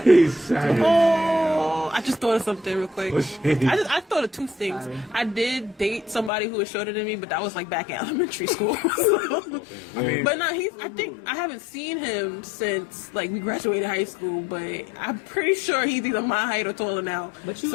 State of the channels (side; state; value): right; drops out; at 6.3 s